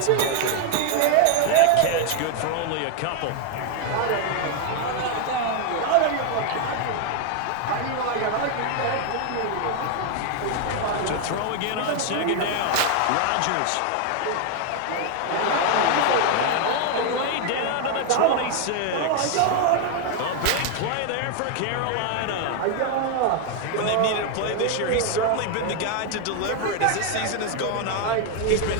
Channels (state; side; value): different; both; correlation 0.01